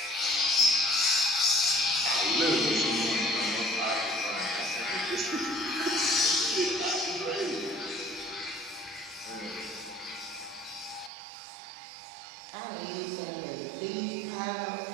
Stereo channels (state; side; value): drops out; left; at 11.1 s